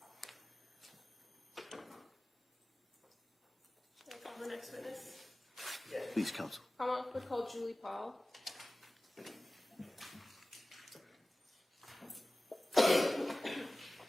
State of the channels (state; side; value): normal; both; correlation 0.98